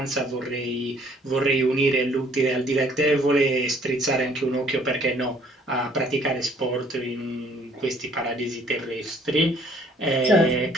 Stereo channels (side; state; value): both; normal; correlation 0.60